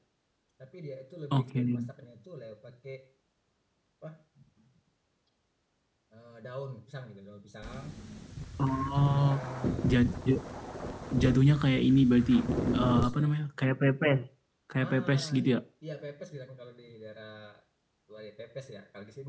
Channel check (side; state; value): both; identical; correlation 1.00